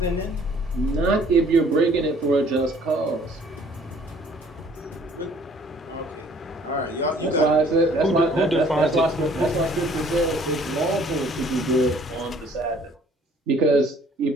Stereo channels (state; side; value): normal; both; correlation 0.57